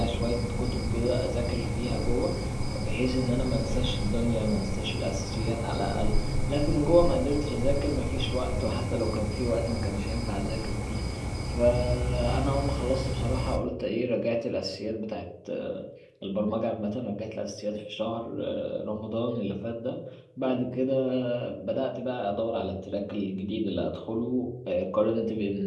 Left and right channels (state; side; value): identical; both; correlation 1.00